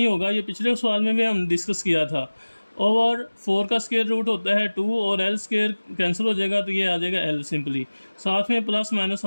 होगा, ये पिछले सवाल में भी हम डिस्कस किया था। ओवर 4 का स्केयर रूट होता है 2 और L स्केयर कैंसिल हो जाएगा तो ये आ जाएगा L सिंपली, साथ में प्लस माइनस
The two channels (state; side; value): inverted; both; correlation -1.00